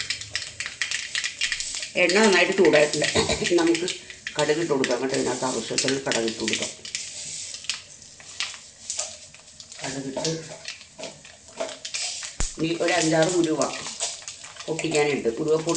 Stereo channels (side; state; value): both; identical; correlation 1.00